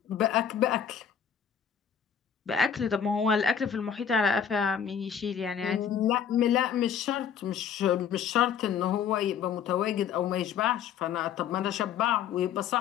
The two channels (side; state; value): right; quieter; 8.1 dB